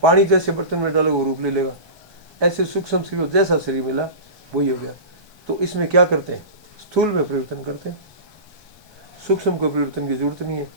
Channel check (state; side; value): late; left; 1.2 ms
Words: पानी जैसे बर्तन में डालोगे वो रूप ले लेगा। ऐसे सूक्ष्म शरीर जैसा शरीर मिला वही हो गया। तो इसमें क्या करते हैं? स्थूल में परिवर्तन करते हैं, सूक्ष्म को परिवर्तन की जरूरत नहीं है।